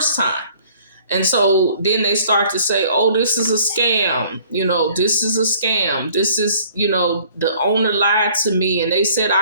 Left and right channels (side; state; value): both; inverted; correlation -0.55